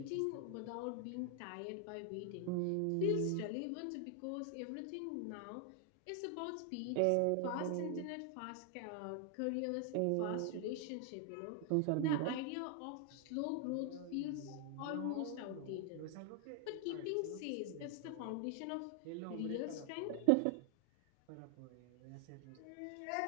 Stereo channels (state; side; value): different; both; correlation 0.00